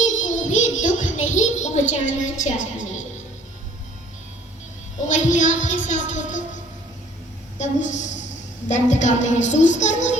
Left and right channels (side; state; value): both; normal; correlation 0.56